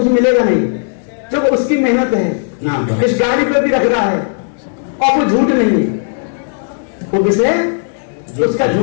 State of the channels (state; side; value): silent; right; digital silence